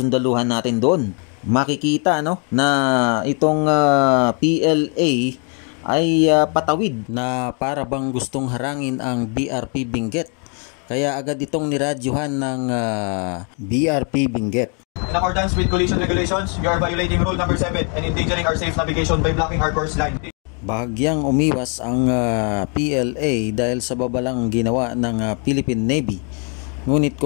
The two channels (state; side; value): quieter; right; 38.5 dB